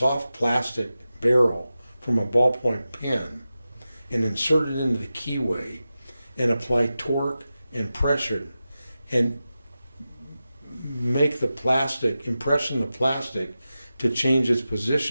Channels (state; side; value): inverted; both; correlation -0.93